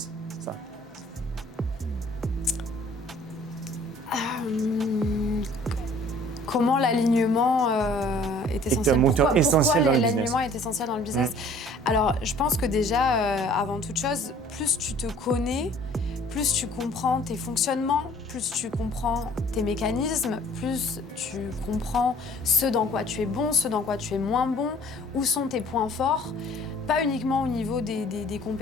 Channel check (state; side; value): normal; both; correlation 0.54